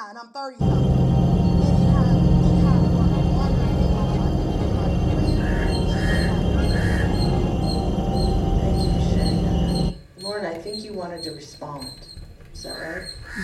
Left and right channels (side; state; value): both; identical; correlation 1.00